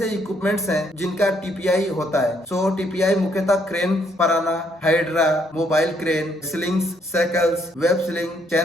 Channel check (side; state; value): both; normal; correlation 0.70